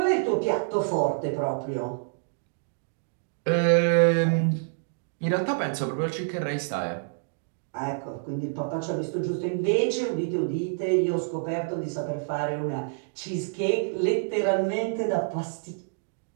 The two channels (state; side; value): silent; left; digital silence